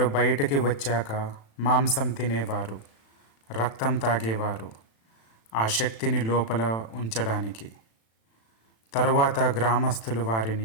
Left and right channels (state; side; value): late; right; 36 ms